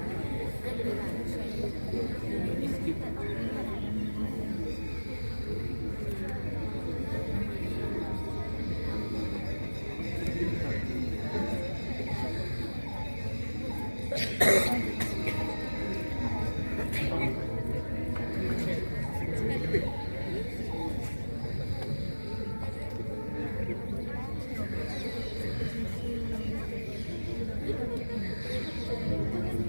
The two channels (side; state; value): both; inverted; correlation -1.00